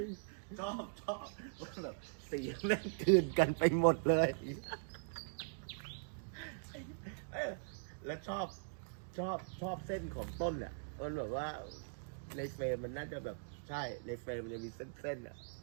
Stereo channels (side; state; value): left; silent; digital silence